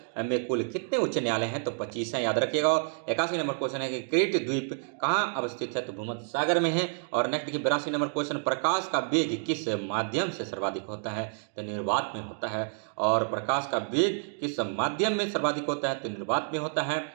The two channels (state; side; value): silent; left; digital silence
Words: में कुल कितने उच्च न्यायालय हैं? तो 25 हैं, याद रखिएगा। 81 नंबर क्वेश्चन है कि क्रीट द्वीप कहाँ अवस्थित है? तो भूमध्य सागर में है। और नेक्स्ट देखिए 82 नंबर क्वेश्चन, प्रकाश का वेग किस माध्यम से सर्वाधिक होता है? तो निर्वात में होता है। और प्रकाश का वेग किस माध्यम में सर्वाधिक होता है? तो निर्वात में होता है।